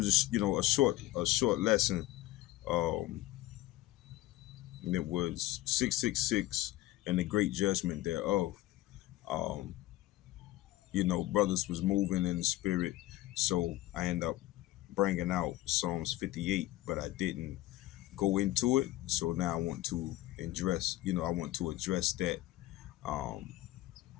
a short lesson. Um, and it was 666 and the great judgment thereof. Um, brothers was moving in the spirit, so I end up bringing out Psalms 58, but I didn't go into it. So now I want to address that. Um,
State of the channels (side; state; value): right; quieter; 16.2 dB